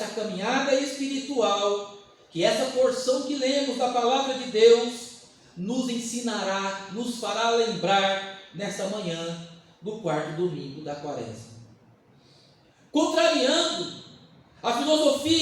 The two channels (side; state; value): both; identical; correlation 1.00